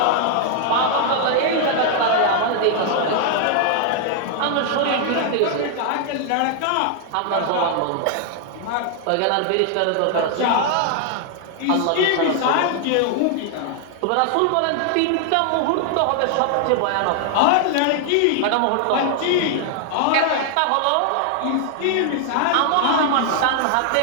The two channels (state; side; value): different; both; correlation 0.00